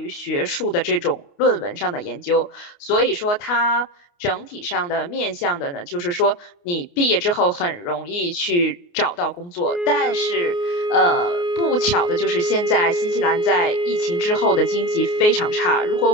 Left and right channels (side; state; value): right; late; 29 ms